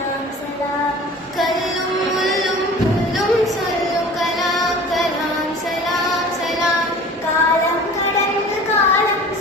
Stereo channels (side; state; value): both; normal; correlation 0.43